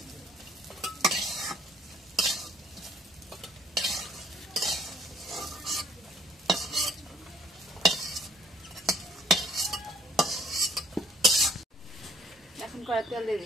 এখন কড়াই তেল দিয়ে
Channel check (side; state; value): both; normal; correlation 0.62